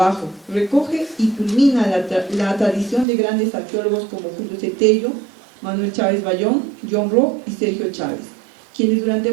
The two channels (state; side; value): drops out; left; at 3.1 s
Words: Recoge y culmina la tradición de grandes arqueólogos como Julio Cetello, Manuel Chávez Bayón, John Rock y Sergio Chávez, quienes durante